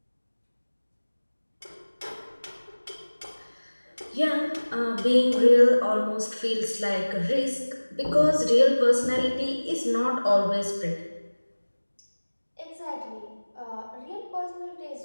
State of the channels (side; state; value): both; inverted; correlation -1.00